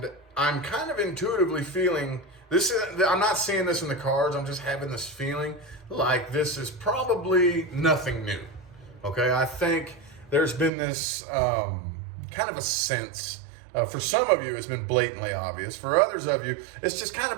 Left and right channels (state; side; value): drops out; left; at 10.7 s